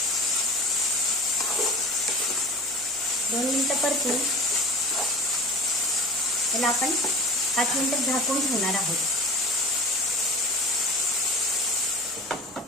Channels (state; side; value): normal; both; correlation 0.38